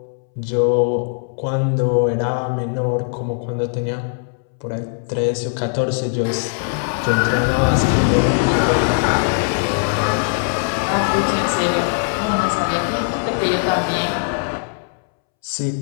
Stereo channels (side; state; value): right; silent; 66 dB below the other